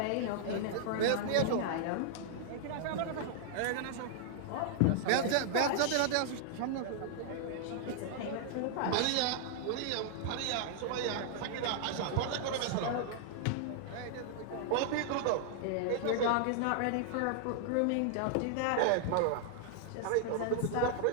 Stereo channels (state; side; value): different; both; correlation -0.01